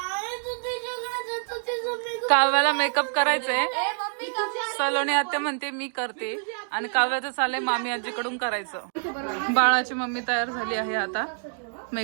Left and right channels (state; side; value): silent; left; 61 dB below the other